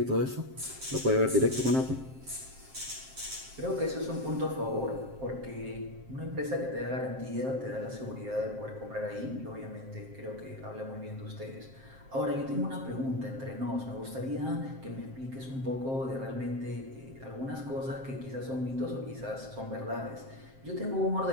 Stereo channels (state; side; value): late; left; 7.6 ms